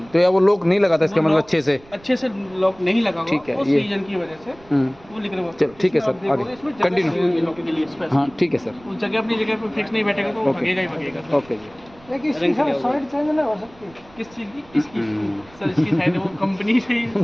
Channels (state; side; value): noise; right; rumble, 25 dB below the sound